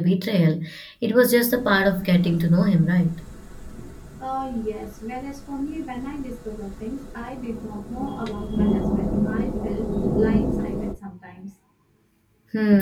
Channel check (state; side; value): identical; both; correlation 1.00